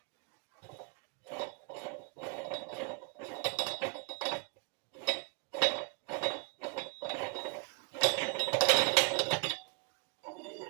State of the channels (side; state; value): left; quieter; 37.0 dB